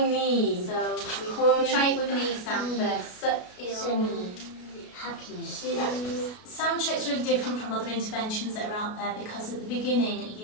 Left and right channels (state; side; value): late; right; 33 ms